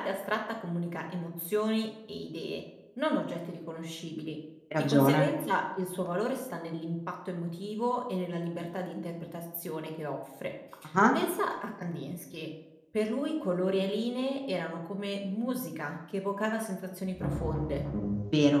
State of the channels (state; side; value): identical; both; correlation 1.00